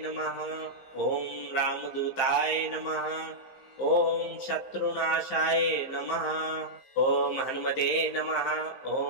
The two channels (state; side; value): late; right; 15 ms